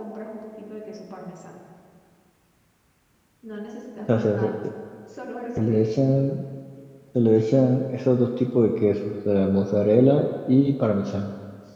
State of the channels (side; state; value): both; identical; correlation 1.00